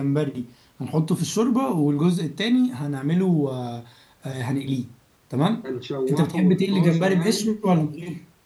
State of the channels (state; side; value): identical; both; correlation 1.00